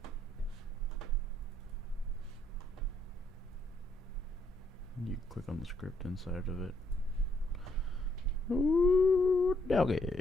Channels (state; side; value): normal; both; correlation 0.72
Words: it. You click on the script inside of it. Ooh,